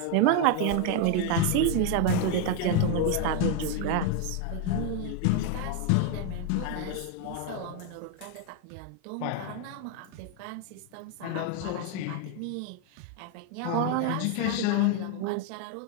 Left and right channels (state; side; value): different; both; correlation 0.01